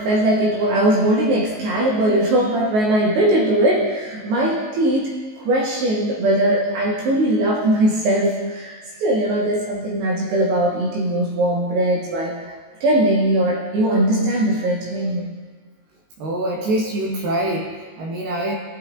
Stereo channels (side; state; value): left; late; 19 ms